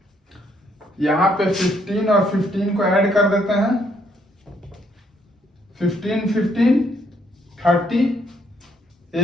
यहाँ पे 15 और 15 को ऐड कर देते हैं, 15 15 30,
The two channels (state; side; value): normal; both; correlation 0.70